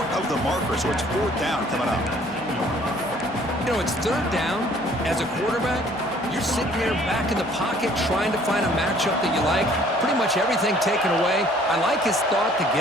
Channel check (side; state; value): both; normal; correlation 0.57